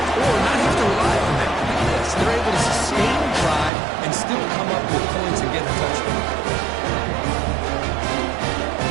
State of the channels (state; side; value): drops out; left; at 3.7 s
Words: or not have to rely on that. Yes, they're able to sustain the drive and still come up with points and get the touchdown.